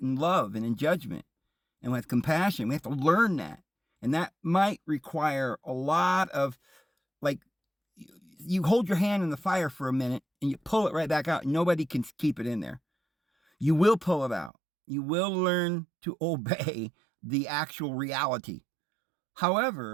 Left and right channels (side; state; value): left; drops out; at 14.5 s